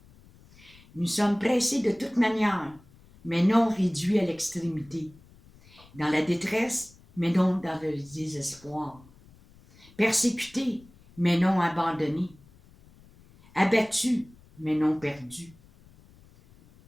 Nous sommes pressés de toute manière, mais non réduits à l'extrémité, dans la détresse, mais non dans le désespoir, persécutés, mais non abandonnés, abattus, mais non perdus,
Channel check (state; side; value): noise; left; rumble, 26 dB below the sound